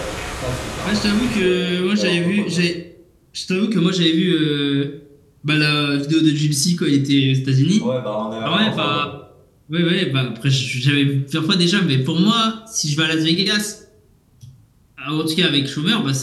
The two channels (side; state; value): both; identical; correlation 1.00